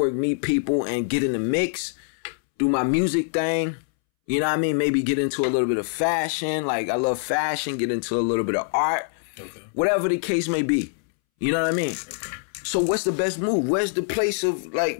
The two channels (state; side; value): silent; right; 62 dB below the other